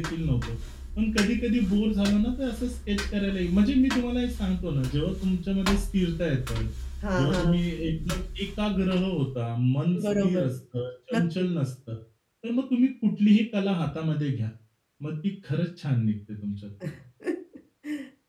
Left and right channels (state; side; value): identical; both; correlation 1.00